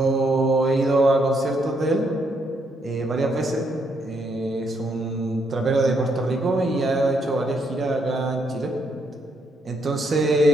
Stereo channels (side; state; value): both; normal; correlation 0.75